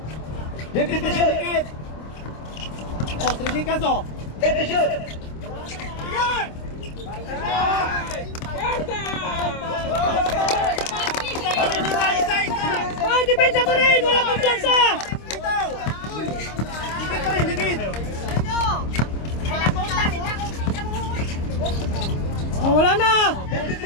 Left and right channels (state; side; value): late; right; 26 ms